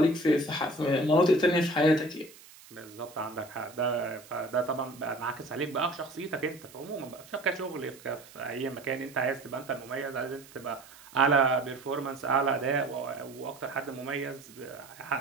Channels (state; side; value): noise; right; hiss, 21 dB below the sound